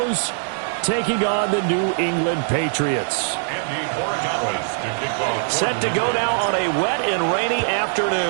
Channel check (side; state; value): left; silent; 60 dB below the other